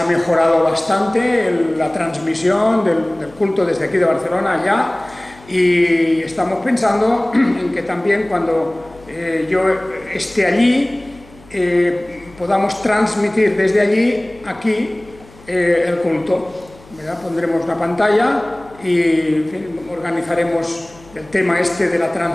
mejorado bastante la transmisión del culto desde aquí de Barcelona allá, y estamos pensando en que también cuando yo esté allí podamos transmitir desde allí aquí el culto, ¿verdad? Pondremos una pantalla y en fin, organizaremos el tema este de la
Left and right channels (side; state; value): left; noise; hum, 24 dB below the sound